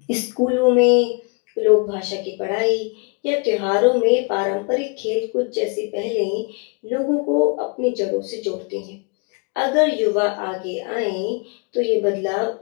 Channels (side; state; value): right; quieter; 34.3 dB